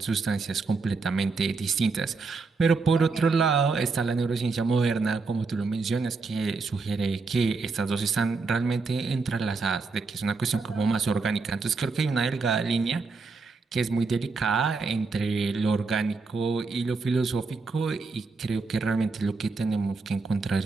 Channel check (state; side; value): quieter; left; 4.2 dB